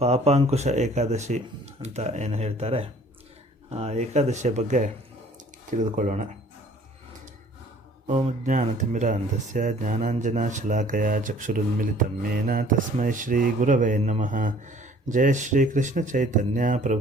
ಏಕಾದಶಿ ಅಂತ ಏನು ಹೇಳ್ತಾರೆ, ಆ ಏಕಾದಶಿಯ ಬಗ್ಗೆ ತಿಳಿದುಕೊಳ್ಳೋಣ. ಓಂ ಜ್ಞಾನತಿಮಿರಾಂಧಸ್ಯ ಜ್ಞಾನಾಂಜನಶಲಾಕಯ ಚಕ್ಷುರುನ್ಮಿಲಿತಂ ಯೇನ ತಸ್ಮೈ ಶ್ರೀ ಗುರವೇ ನಮಃ. ಜಯ ಶ್ರೀ ಕೃಷ್ಣ ಚೈತನ್ಯ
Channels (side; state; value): both; normal; correlation 0.54